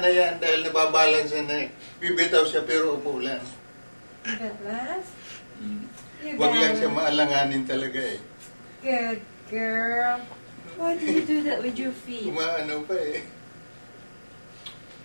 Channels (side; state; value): both; inverted; correlation -1.00